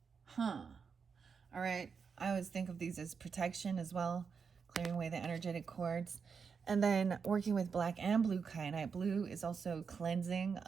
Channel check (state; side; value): quieter; left; 5.8 dB